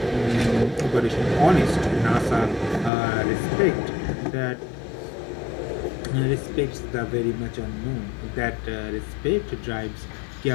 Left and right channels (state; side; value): drops out; right; at 2.9 s